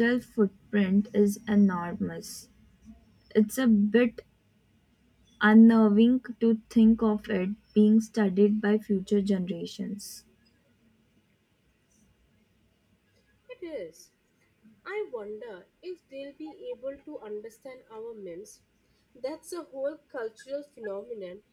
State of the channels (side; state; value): both; identical; correlation 1.00